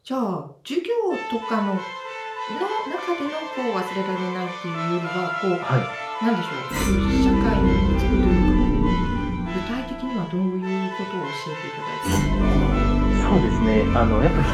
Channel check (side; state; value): both; identical; correlation 1.00